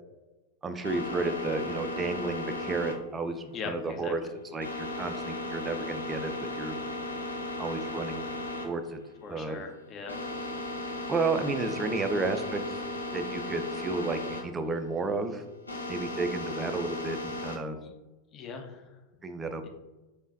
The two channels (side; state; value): both; normal; correlation 0.33